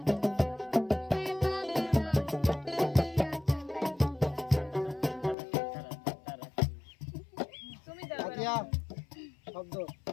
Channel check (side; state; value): right; drops out; at 5.4 s